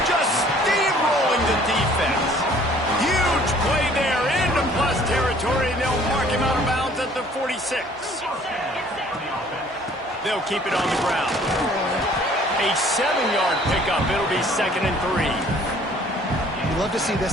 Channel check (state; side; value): normal; both; correlation 0.56